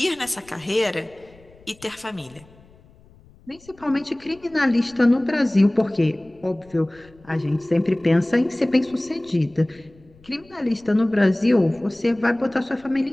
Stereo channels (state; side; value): noise; left; rumble, 27 dB below the sound